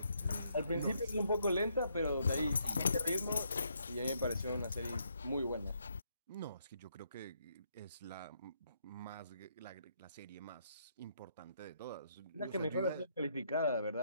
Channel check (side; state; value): both; inverted; correlation -0.74